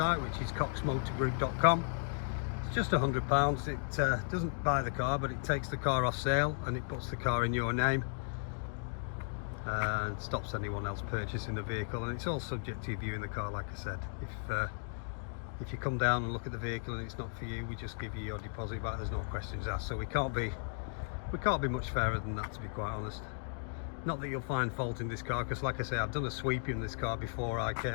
which is coxmotorgroup.com. It's just £100. It doesn't buy the car, but it takes the car off sale and it puts the car in your name and stops anyone else purchasing the vehicle. And it's all subject to you viewing the car, like I said. If you come down and look at the vehicle and it's not for you, we just give you your deposit back. There's no questions asked. So we can't be much fairer than that, to be quite honest. Not that you'll find fault in this car, because like I say, I've done a sweep in this car before I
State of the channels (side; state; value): right; silent; digital silence